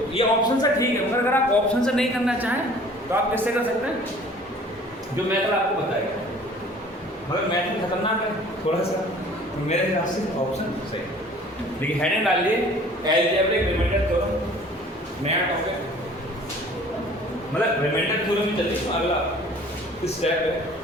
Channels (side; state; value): both; normal; correlation 0.50